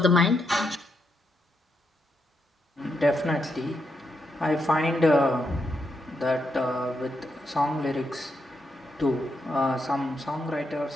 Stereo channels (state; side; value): normal; both; correlation 0.81